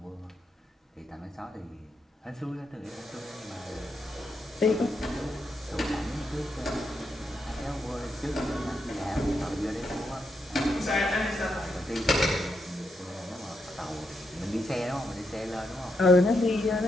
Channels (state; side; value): normal; both; correlation 0.82